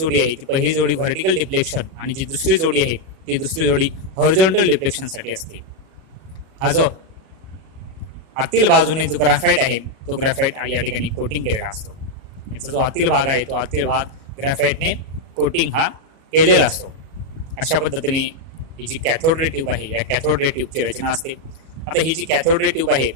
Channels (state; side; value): late; left; 37 ms